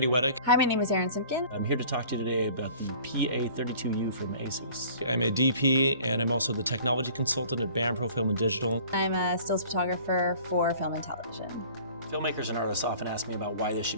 Weddick. Hi, my name is Erin Simpkin. I'm here to talk to you today about the PA32U from ASUS. I'm a DP and I'm also the technology consultant at Pro Film and Digital. I'm a stills photographer for film and television. Filmmakers and artists often ask me about why they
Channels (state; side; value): inverted; both; correlation -0.49